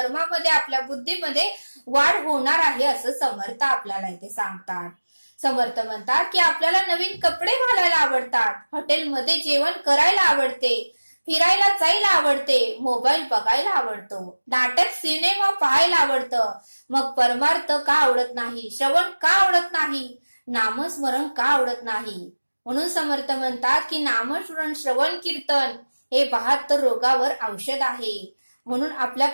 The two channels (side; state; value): both; inverted; correlation -1.00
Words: आपल्या बुद्धीमध्ये वाढ होणार आहे असं समर्थ आपल्याला इथे सांगतात. समर्थ म्हणतात की आपल्याला नवीन कपडे घालायला आवडतात, हॉटेलमध्ये जेवण करायला आवडते, फिरायला जायला आवडते, मोबाईल बघायला आवडतो, नाटक, सिनेमा पाहायला आवडतं. मग परमार्थ का आवडत नाही? श्रवण का आवडत नाही? नामस्मरण का आवडत नाही? म्हणून समर्थ म्हणतात की नामस्मरण, श्रवण, कीर्तन हे 72 रोगावर औषध आहे. म्हणून